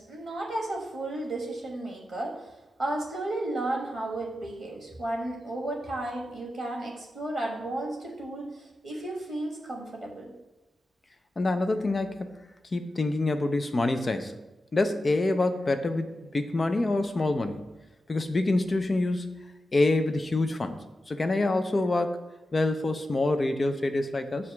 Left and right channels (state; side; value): normal; both; correlation 0.91